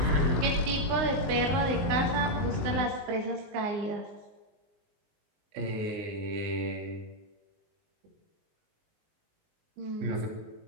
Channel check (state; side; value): late; left; 19 ms